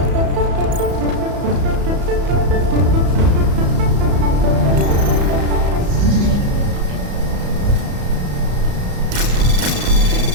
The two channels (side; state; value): left; late; 34 ms